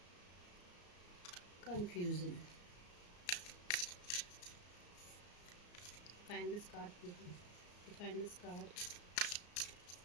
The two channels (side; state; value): right; late; 34 ms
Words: Confusion, define this card please, define this card,